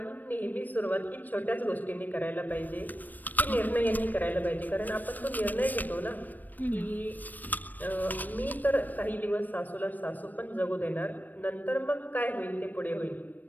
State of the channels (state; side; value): late; right; 0.087 ms